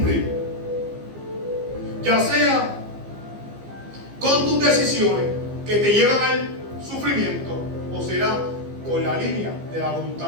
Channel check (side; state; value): left; late; 15 ms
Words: Ya sea con tus decisiones que te llevan al sufrimiento, o será con la línea de la